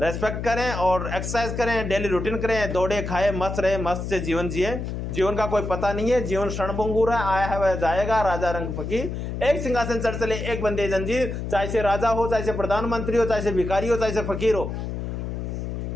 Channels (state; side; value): noise; left; hum, 5 dB below the sound